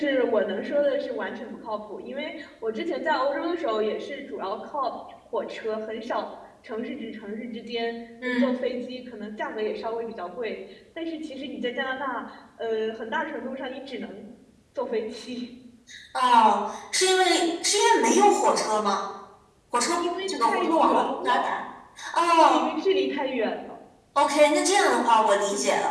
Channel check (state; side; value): identical; both; correlation 1.00